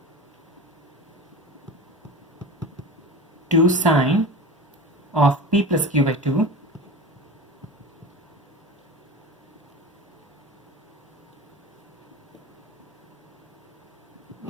sine of p plus q by 2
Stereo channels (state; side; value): normal; both; correlation 0.30